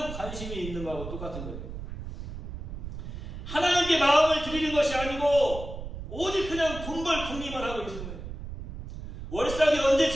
관심이 있는 거하고 똑같은 거예요. 하나님께 마음을 드리는 것이 아니고 오직 그냥 돈벌 궁리만 하고 있는 거예요. 월삭이 언제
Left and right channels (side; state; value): right; noise; rumble, 9 dB below the sound